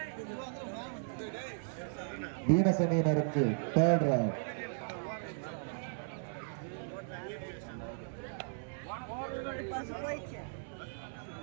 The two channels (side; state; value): left; silent; 54 dB below the other